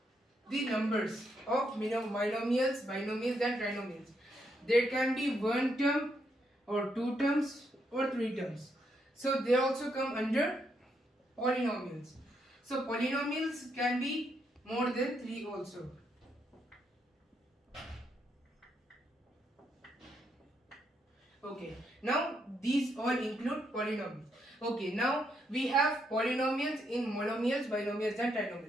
the numbers of binomials, and trinomials. There can be one term or two terms or three terms. So they also come under polynomials. So polynomials can be more than 3 also. Okay, now these all include polynomials. Okay, now we have polynomials in monomials, binomials and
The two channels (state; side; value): normal; both; correlation 0.77